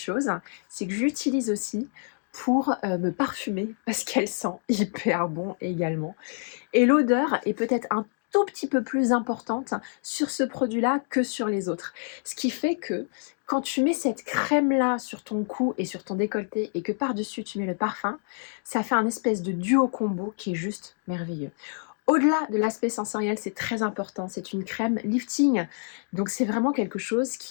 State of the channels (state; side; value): silent; right; 60 dB below the other